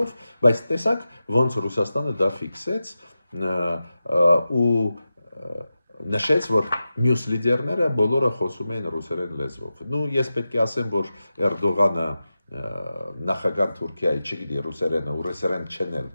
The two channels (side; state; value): both; inverted; correlation -0.93